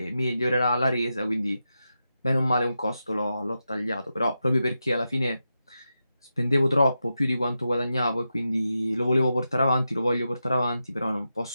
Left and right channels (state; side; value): inverted; both; correlation -0.89